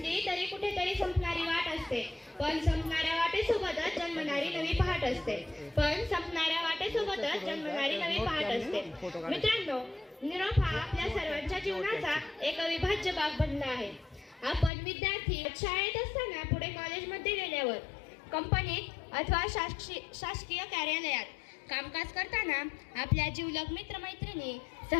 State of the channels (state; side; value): drops out; right; at 14.7 s